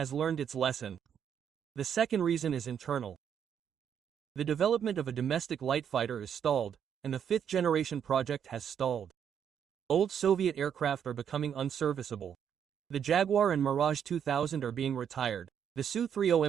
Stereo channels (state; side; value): quieter; left; 8.4 dB